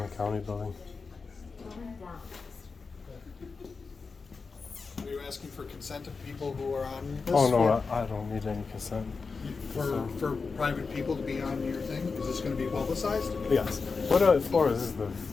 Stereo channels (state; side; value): quieter; right; 4.6 dB